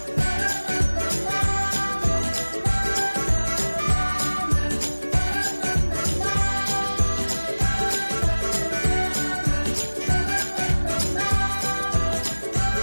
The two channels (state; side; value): inverted; both; correlation -1.00